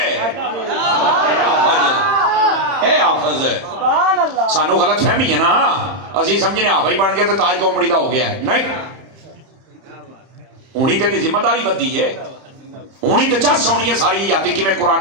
اے حافظ ہے۔ سانو غلط فہمی ہے نا، اسی سمجھنے حافظ بن گیا تو تاج قوم بڑی دا ہو گیا ہے، نہیں، ہونی تے دی ذمہ داری بدی ہے، ہونی تو چس ہونی ہے ساری یاتی کی میں قرآن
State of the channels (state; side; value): late; left; 31 ms